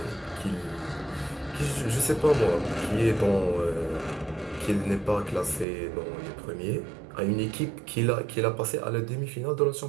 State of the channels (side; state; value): left; drops out; at 5.7 s